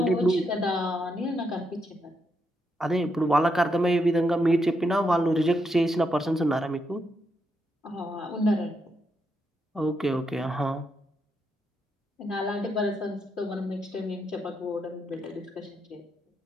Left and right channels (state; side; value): normal; both; correlation 0.80